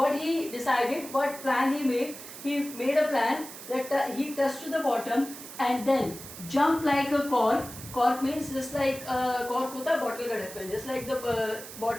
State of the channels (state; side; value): noise; right; hiss, 13 dB below the sound